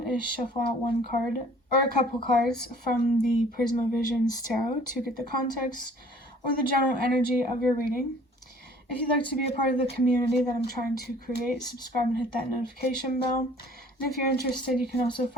is shuffle out one card or a couple cards from the Prisma Visions Tarot to get the context or the general energy of your reading. If you'd like to be a part of the community that I'm trying to create, subscribe and hit that notification bell. And if you're interested, you can also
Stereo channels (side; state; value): both; normal; correlation 0.53